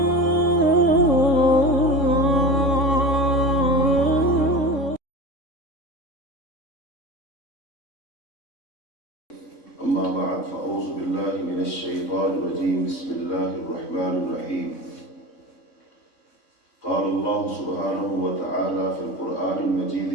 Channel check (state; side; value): late; right; 3.6 ms